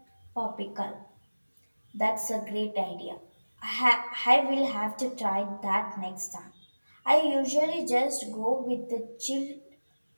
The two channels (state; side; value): inverted; both; correlation -1.00